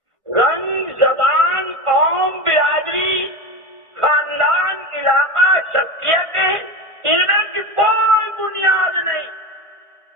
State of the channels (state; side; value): late; left; 1.5 ms